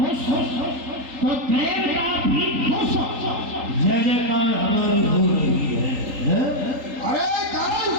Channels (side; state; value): left; late; 3.8 ms